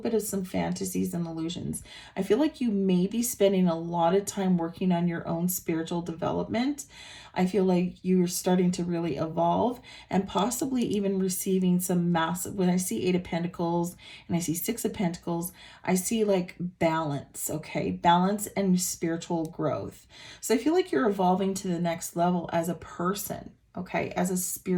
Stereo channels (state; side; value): identical; both; correlation 1.00